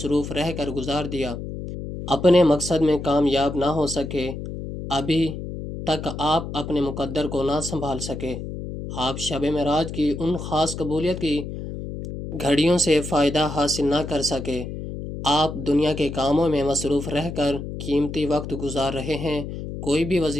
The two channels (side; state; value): left; noise; hum, 8 dB below the sound